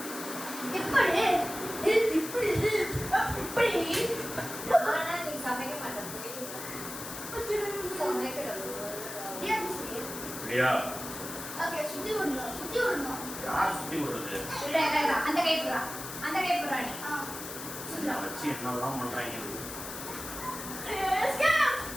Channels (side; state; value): left; noise; hiss, 9 dB below the sound